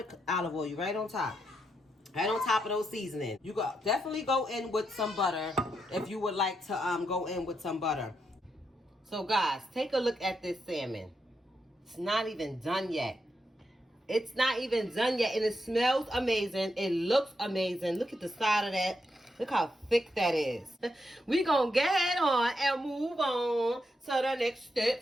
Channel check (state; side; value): normal; both; correlation 0.82